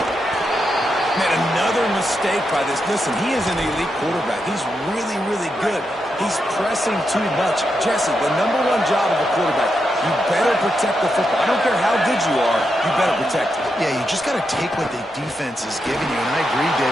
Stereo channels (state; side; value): normal; both; correlation 0.84